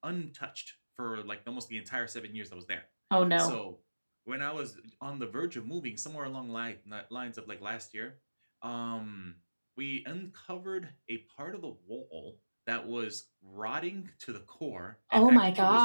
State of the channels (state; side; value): inverted; both; correlation -1.00